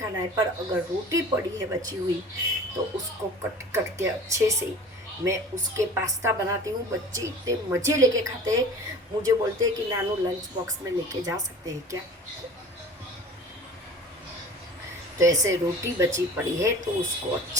है। पर अगर रोटी पड़ी है बची हुई, तो उसको कट कट के अच्छे से मैं उसके पास्ता बनाती हूँ। बच्चे इतने मज़े लेके खाते हैं, मुझे बोलते हैं कि नानू लंच बॉक्स में लेके जा सकते हैं क्या? तो ऐसे रोटी बची पड़ी है तो उसको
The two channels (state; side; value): normal; both; correlation 0.42